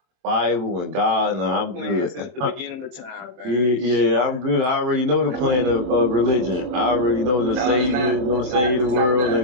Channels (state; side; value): late; left; 24 ms